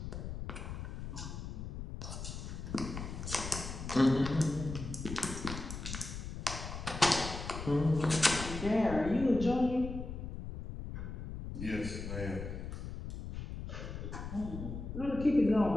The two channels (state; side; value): noise; left; rumble, 7 dB below the sound